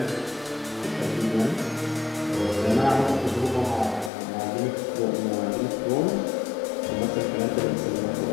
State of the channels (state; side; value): drops out; right; at 4.1 s